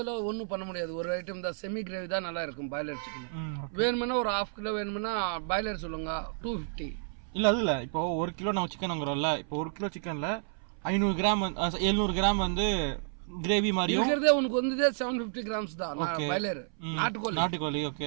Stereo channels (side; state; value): left; silent; 57 dB below the other